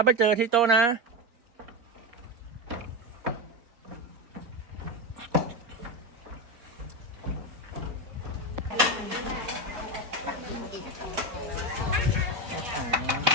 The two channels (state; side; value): late; left; 4.3 ms